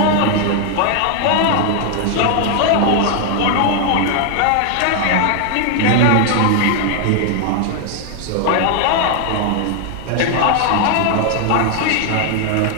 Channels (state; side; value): different; both; correlation 0.00